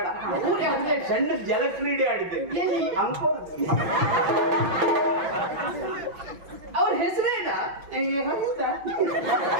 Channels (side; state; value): left; late; 5.8 ms